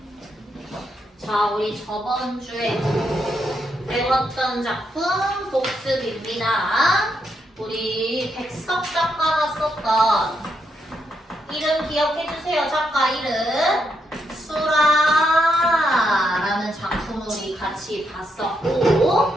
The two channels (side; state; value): both; normal; correlation 0.80